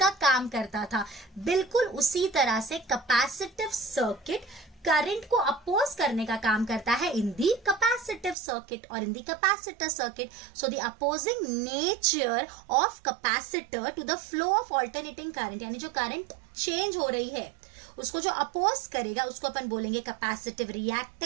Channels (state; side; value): drops out; left; at 8.3 s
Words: काम करता था। बिल्कुल उसी तरह से कैपेसिटिव सर्किट करंट को अपोज करने का काम करता है इन दी कैपेसिटिव सर्किट और in the capacitor circuit. So the opposing nature of capacitor to the flow of alternating current, यानी जो करंट चेंज हो रही है उसको जो अपोज करेगा उसको अपन बोलेंगे कैपेसिटिव